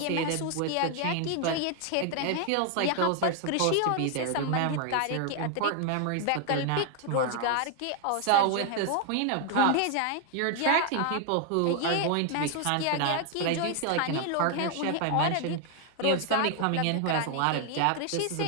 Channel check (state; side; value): different; both; correlation 0.00